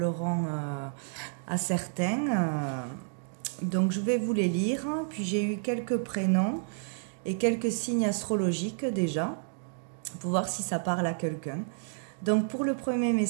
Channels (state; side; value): silent; left; digital silence